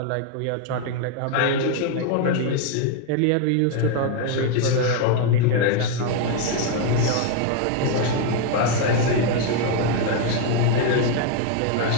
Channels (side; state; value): both; different; correlation 0.01